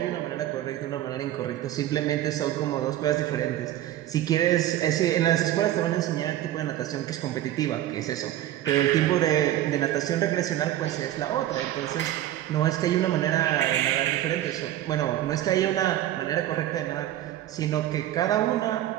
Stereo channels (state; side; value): quieter; left; 13.1 dB